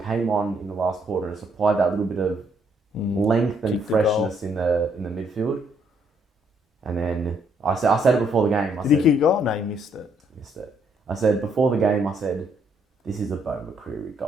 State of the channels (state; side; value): normal; both; correlation 0.70